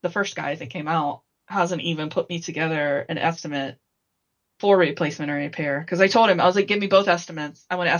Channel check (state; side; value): identical; both; correlation 1.00